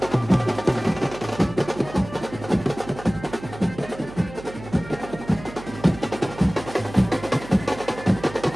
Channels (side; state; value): right; noise; hum, 15 dB below the sound